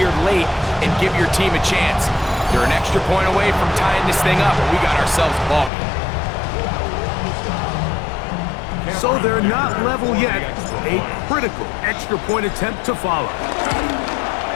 late and give your team a chance? They're an extra point away from tying this thing up, and we got ourselves a ball game. So they're not level yet. A critical extra point attempt to follow.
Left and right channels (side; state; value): right; drops out; at 5.7 s